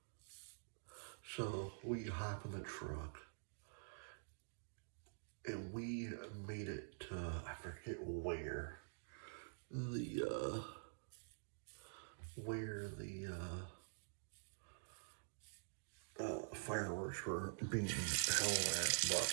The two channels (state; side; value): silent; left; digital silence